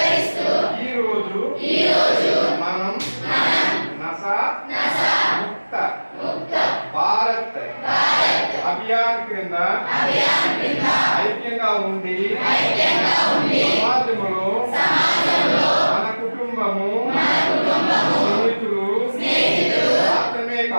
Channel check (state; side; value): inverted; both; correlation -1.00